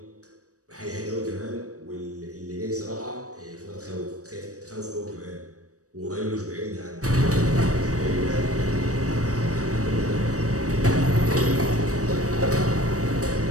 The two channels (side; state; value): left; late; 0.66 ms